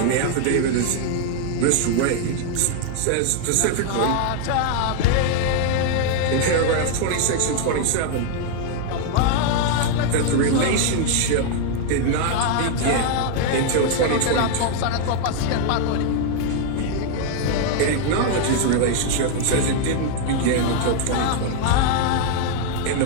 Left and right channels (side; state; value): both; different; correlation 0.00